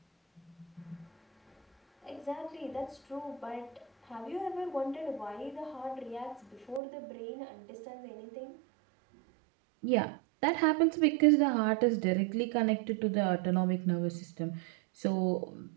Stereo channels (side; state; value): left; drops out; at 6.8 s